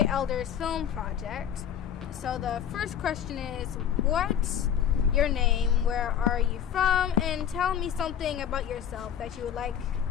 Elders Film Project. So the first question is, what's your name, where are you from, and tell me something about yourself that you would like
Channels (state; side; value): quieter; right; 9.1 dB